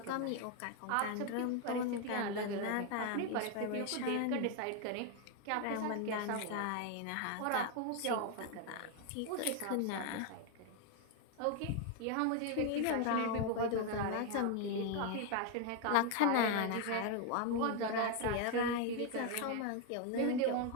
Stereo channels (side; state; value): both; different; correlation 0.01